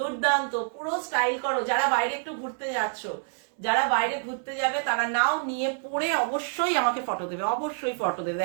পুরো স্টাইল করো। যারা বাইরে একটু ঘুরতে যাচ্ছ, যারা বাইরে ঘুরতে যাবে, তারা নাও, নিয়ে পরে অবশ্যই আমাকে ফটো দেবে, অবশ্যই ফটো দেবে।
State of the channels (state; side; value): silent; left; digital silence